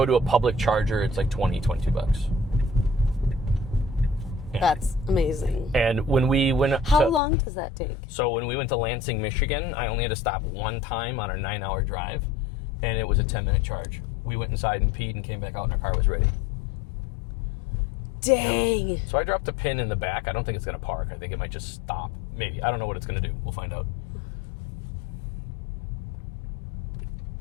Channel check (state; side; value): drops out; right; at 7.2 s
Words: to a public charger, it's like $22. Yeah. That's amazing. And when we went How long does that take? So when we went to Lansing, Michigan, I only had to stop one time on our 9-hour drive, and it was a 10-minute charge. We went inside and peed and came back out and our car was ready. Dang. Yep. So I dropped a pin in the back. I don't think it's going to park. I think it might just stop. Maybe. I don't know what it's going to do. We'll find out.